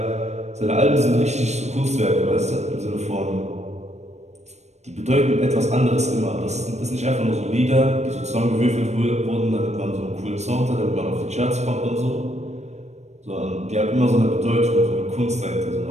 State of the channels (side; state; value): left; late; 0.32 ms